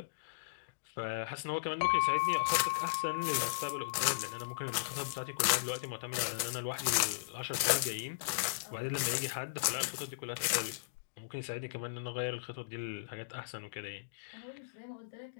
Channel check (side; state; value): right; quieter; 34.6 dB